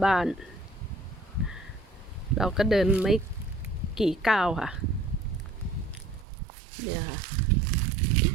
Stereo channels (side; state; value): left; drops out; at 6.2 s